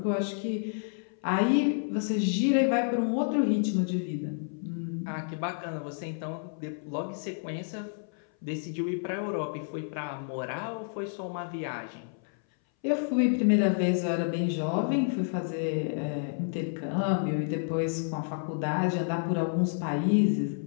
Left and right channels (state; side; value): silent; right; 58 dB below the other